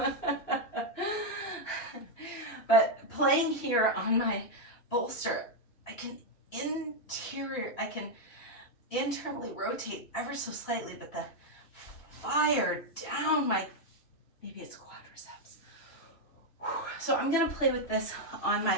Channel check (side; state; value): right; late; 3.0 ms